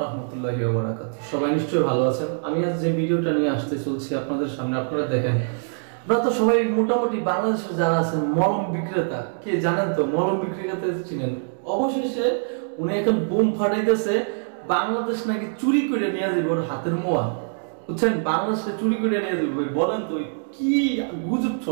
রাহমাতুল্লাহি ওয়া বারাকাতুহু। সবাই নিশ্চয়ই ভালো আছেন। আমি আজ যে ভিডিওটা নিয়ে আসতে চলছি আপনাদের সামনে, আপনারা দেখেন, আপনারা তো সবাই মোটামুটি বাংলাদেশের যারা আছেন মলম বিক্রেতা, কে জানেন তো মলম বিক্রেতা চিনেন। অবশেষে উনি এখন বুম ফাটাইতেছে, বাংলাদেশ নাকি চুরি করে নিয়ে যাবে ওর হাতের মোয়া, বুঝছেন? বাংলাদেশে চুরি করে নিয়ে যাবে। বলেন তো কি গুজব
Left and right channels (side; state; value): left; silent; digital silence